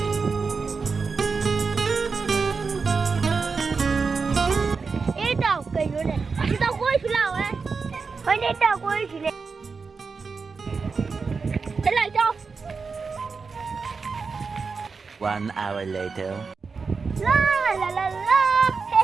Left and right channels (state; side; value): quieter; left; 4.9 dB